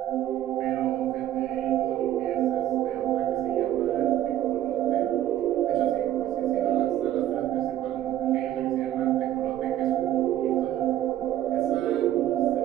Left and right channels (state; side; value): quieter; left; 12.6 dB